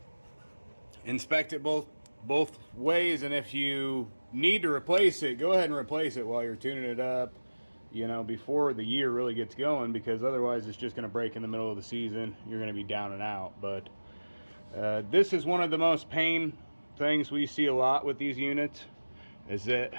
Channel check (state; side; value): inverted; both; correlation -1.00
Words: inspect it both ways, and if you need to replace it, go ahead and replace it while you're tuning it up, you know, before the year really gets going, because otherwise it's just going to break in the middle of the season. You're going to be down and out. But this is one of the most pain things we see a lot with these units, is